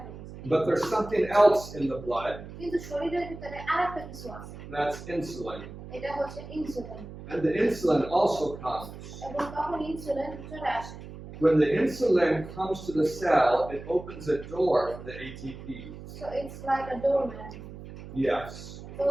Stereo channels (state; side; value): noise; right; hum, 13 dB below the sound